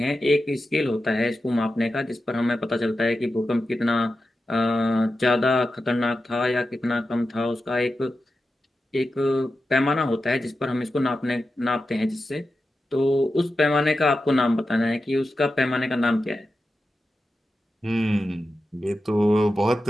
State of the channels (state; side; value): normal; both; correlation 0.91